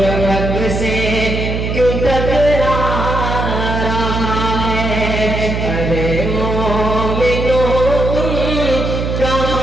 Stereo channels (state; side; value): noise; right; hum, 2 dB below the sound